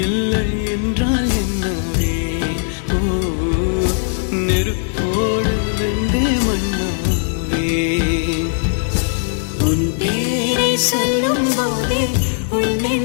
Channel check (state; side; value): silent; right; digital silence